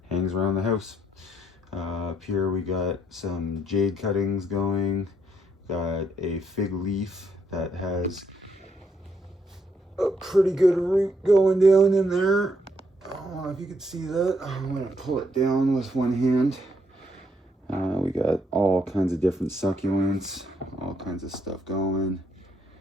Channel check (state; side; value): normal; both; correlation 0.74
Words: hangs around the house. Up here we got some jade cuttings going, got a fig leaf that has a pretty good root going down in there. I don't know if you can see that. I'm going to pull it down with one hand. We got all kinds of different succulents, all kinds of stuff going.